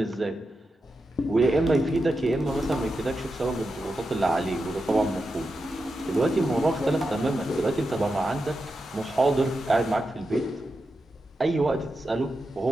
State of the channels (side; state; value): both; normal; correlation 0.89